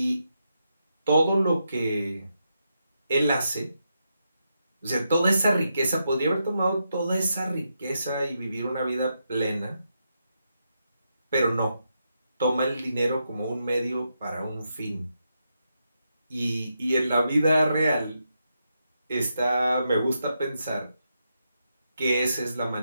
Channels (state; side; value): inverted; both; correlation -0.84